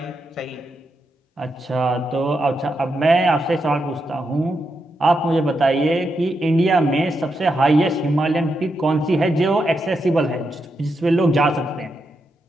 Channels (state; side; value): normal; both; correlation 0.84